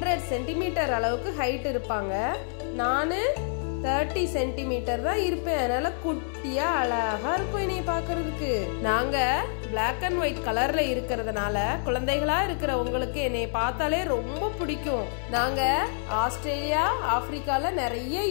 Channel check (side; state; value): right; silent; 60 dB below the other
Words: சென்டிமீட்டர் அளவுக்கு ஹைட் இருப்பாங்க, நானு 30 சென்டிமீட்டர் தான் இருப்பேன். அதனால குட்டியா அழகா இருக்கும் என்னைய பாக்குறதுக்கு. நாங்க பிளாக் அண்ட் ஒயிட் கலர்ல இருக்கிறதுனால குழந்தைகளா இருக்கிற உங்களுக்கு என்னைய பார்த்தாலே ரொம்ப பிடிக்கும். நாங்க ஆஸ்திரேலியா ஆப்பிரிக்கால நிறைய